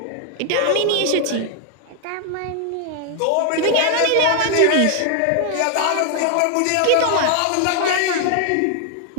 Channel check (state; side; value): different; both; correlation 0.00